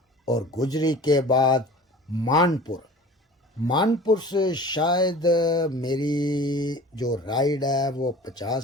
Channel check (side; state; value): both; normal; correlation 0.42